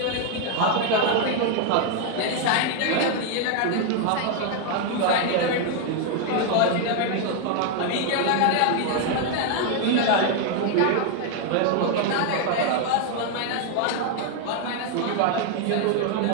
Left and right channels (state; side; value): different; both; correlation 0.01